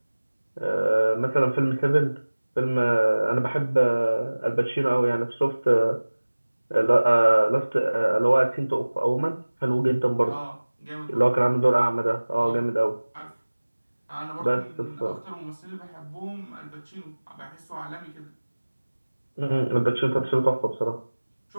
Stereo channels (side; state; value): both; inverted; correlation -1.00